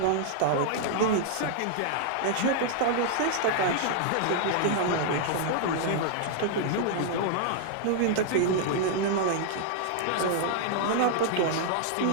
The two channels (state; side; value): different; both; correlation 0.00